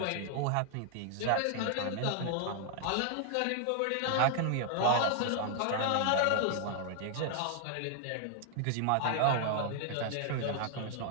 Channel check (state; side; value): different; both; correlation 0.00